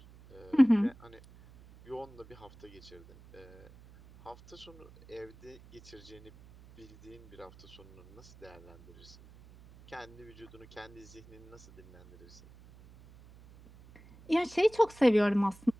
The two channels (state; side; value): noise; right; hum, 22 dB below the sound